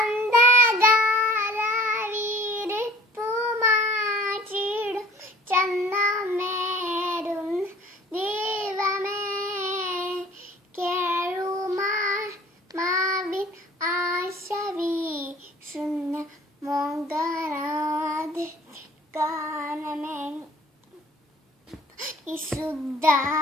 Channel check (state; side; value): normal; both; correlation 0.50